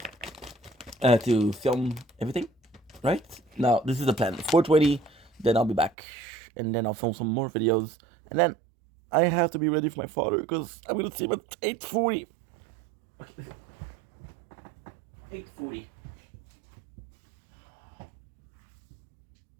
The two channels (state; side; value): drops out; left; at 5.9 s